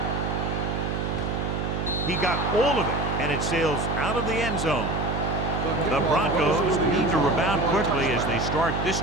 He got all of it, and it sails out of the end zone. The Broncos need to rebound quickly as they start this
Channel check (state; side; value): noise; right; hum, 2 dB below the sound